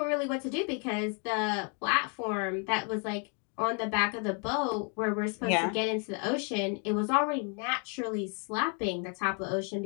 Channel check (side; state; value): right; quieter; 37.8 dB